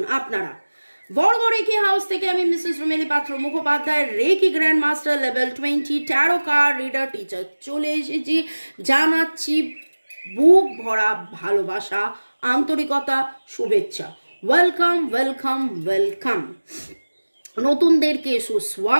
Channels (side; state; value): both; inverted; correlation -1.00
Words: আপনারা? বড়গড় রেকি হাউস থেকে আমি Mrs Rumeli Patra Mukhopadhyay, reiki grand master level 20 tarot card reader teacher চলে এসেছি। জানাচ্ছি বুক ভরা ভালোবাসা, আন্তরিকতা, শুভেচ্ছা। Welcome welcome welcome. নতুনদেরকে